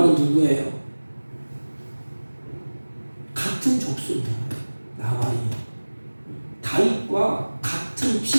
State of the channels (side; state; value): both; inverted; correlation -1.00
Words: 누구예요? 같은 족속입니다. 나발이 다윗과 같은